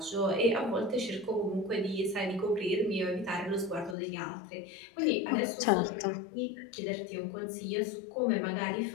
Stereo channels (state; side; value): drops out; right; at 4.0 s